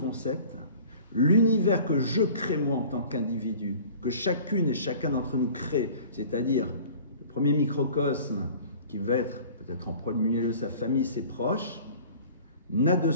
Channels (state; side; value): inverted; both; correlation -0.46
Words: l'univers que je crée moi en tant qu'individu, que chacune et chacun d'entre nous crée, c'est-à-dire le premier microcosme qui va être peut-être en premier lieu sa famille, ses proches, n'a de